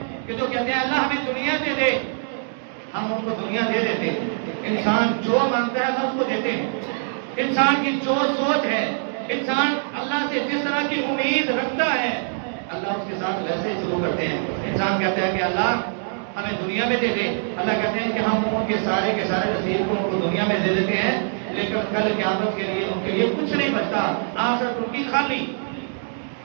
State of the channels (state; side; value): silent; left; 63 dB below the other